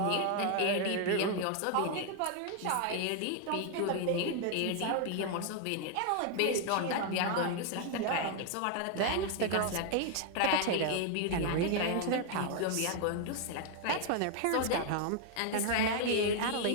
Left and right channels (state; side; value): different; both; correlation 0.00